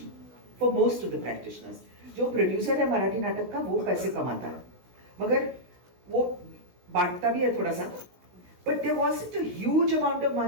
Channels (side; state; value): left; late; 16 ms